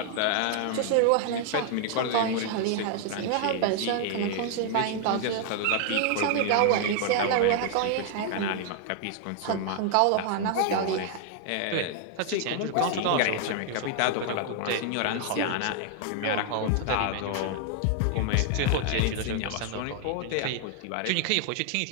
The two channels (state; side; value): different; both; correlation 0.00